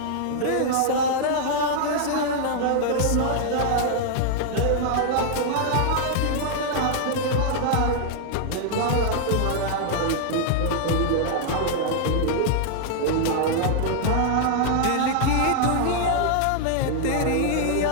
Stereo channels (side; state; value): both; different; correlation -0.01